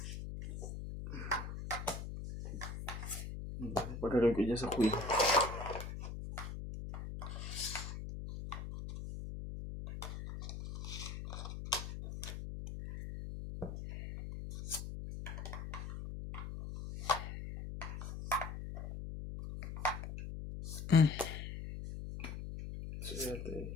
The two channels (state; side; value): noise; left; hum, 7 dB below the sound